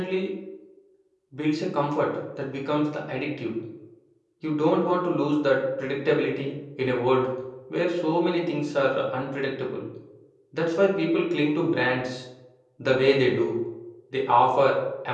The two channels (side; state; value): both; identical; correlation 1.00